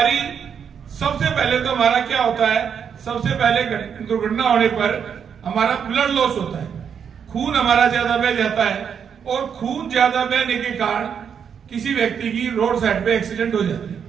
सबसे पहले तो हमारा क्या होता है, सबसे पहले दुर्घटना होने पर हमारा ब्लड लॉस होता है, खून हमारा ज्यादा बह जाता है और खून ज्यादा बहने के कारण किसी व्यक्ति की रोड साइड पे एक्सीडेंट हो जाती है।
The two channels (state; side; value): quieter; left; 7.4 dB